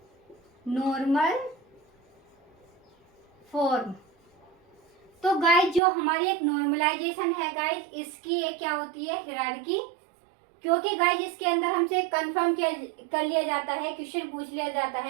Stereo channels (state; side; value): drops out; left; at 5.8 s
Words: नॉर्मल फॉर्म। तो गाइस जो हमारी एक नॉर्मलाइजेशन है गाइस, इसकी एक क्या होती है, हिरार्की। क्योंकि गाइस इसके अंदर हमसे कंफर्म कर लिया जाता है, क्वेश्चन पूछ लिया जाता